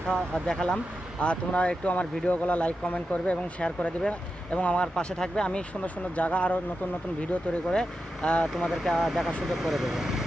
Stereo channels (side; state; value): both; normal; correlation 0.89